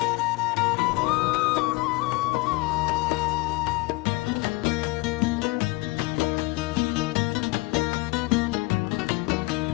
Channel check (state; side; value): quieter; right; 23.0 dB